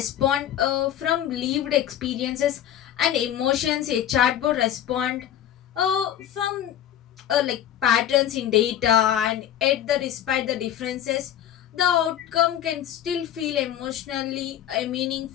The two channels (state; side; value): quieter; right; 10.9 dB